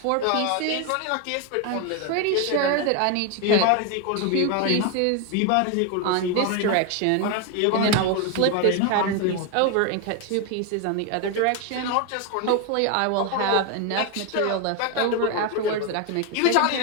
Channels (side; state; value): both; different; correlation 0.01